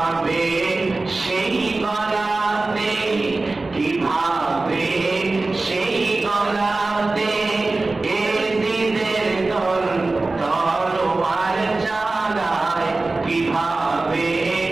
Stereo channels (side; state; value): left; quieter; 3.3 dB